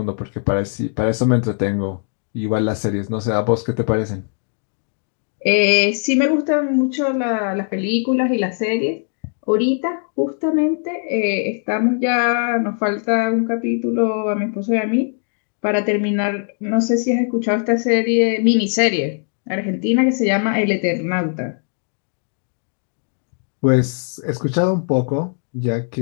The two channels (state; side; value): silent; right; 55 dB below the other